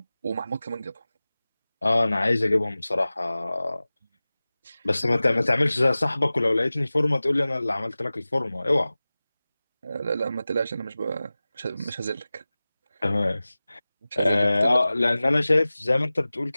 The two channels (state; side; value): inverted; both; correlation -0.97